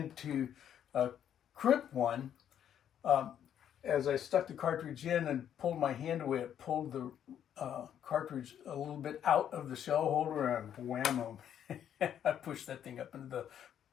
crimp one, as I stuck the cartridge in and pulled my hand away, it pulled the cartridge a little bit out of the shell holder, and whammo, I pushed that thing up into the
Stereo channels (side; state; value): right; quieter; 9.7 dB